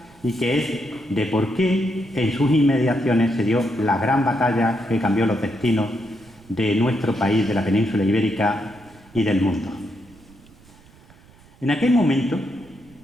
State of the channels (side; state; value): right; noise; rumble, 26 dB below the sound